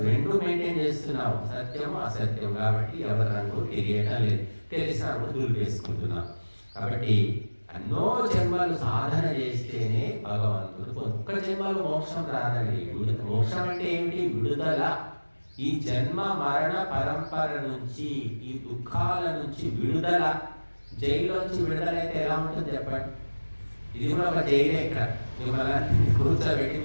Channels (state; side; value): inverted; both; correlation -1.00